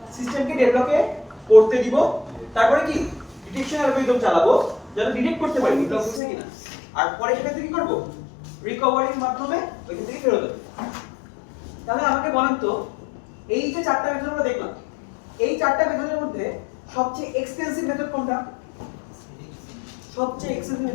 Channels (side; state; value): right; drops out; at 6.2 s